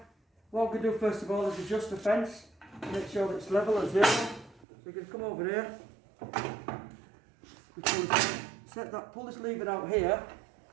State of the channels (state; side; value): drops out; left; at 4.7 s